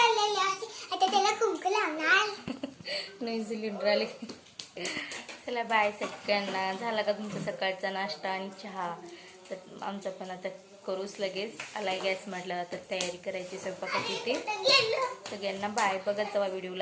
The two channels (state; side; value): identical; both; correlation 1.00